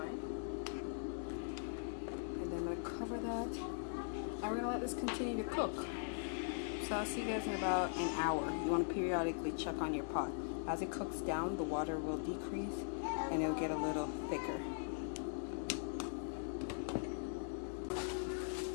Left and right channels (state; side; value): silent; right; digital silence